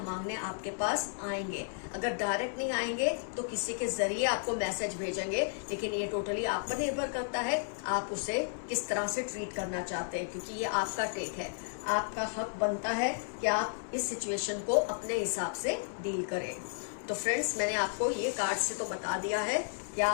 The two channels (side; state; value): right; silent; 56 dB below the other